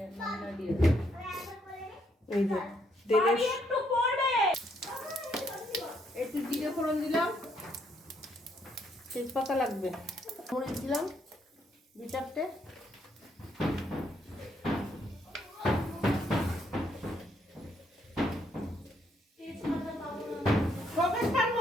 নামিয়ে দিয়ে দে। এই যে তেলে একটু পড়বে। একটু জিরে ফোড়ন দিলাম, তেজপাতা লাগবে, মরিচ দিলাম 2-4টে, তেজপাতা পাবো না। শোকেসটার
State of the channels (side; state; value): both; normal; correlation 0.72